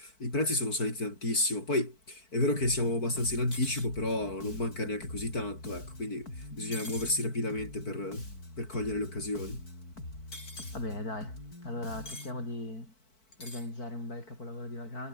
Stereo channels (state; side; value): late; right; 4.5 ms